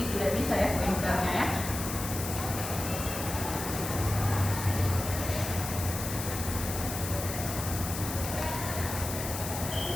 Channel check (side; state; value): left; noise; hiss, 6 dB below the sound